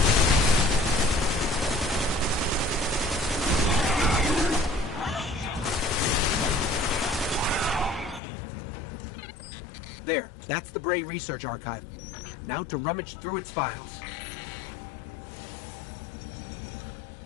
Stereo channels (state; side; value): drops out; right; at 8.2 s